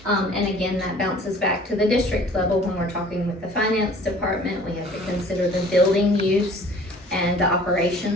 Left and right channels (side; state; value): both; normal; correlation 0.50